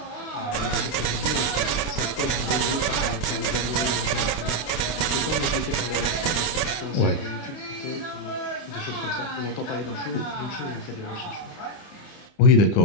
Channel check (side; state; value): right; late; 29 ms